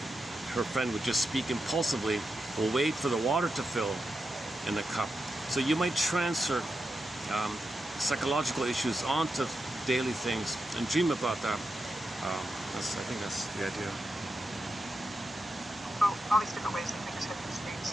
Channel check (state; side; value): normal; both; correlation 0.88